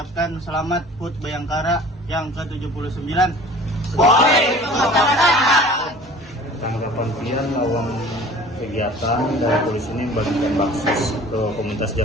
selamat HUT Bayangkara yang ke-79. Tanggapan pian lawan kegiatan dari polisi ini membagikan baksos ke komunitas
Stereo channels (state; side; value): normal; both; correlation 0.46